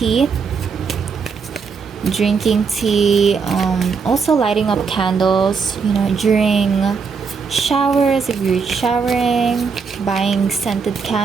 also lighting up candles, during showers if you're showering, buying scented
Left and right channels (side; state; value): left; quieter; 5.5 dB